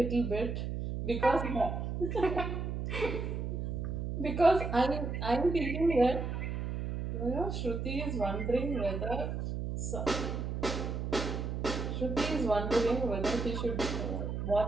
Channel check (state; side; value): noise; right; hum, 3 dB below the sound